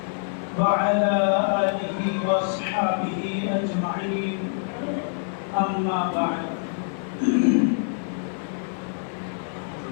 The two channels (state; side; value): silent; right; 61 dB below the other